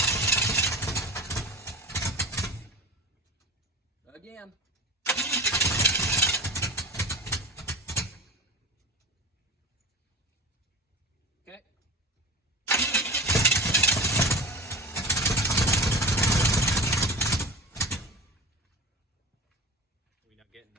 Again. Okay. Are we not getting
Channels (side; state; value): both; normal; correlation 0.29